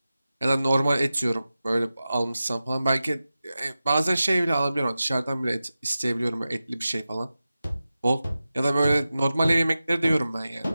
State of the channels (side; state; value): both; inverted; correlation -0.94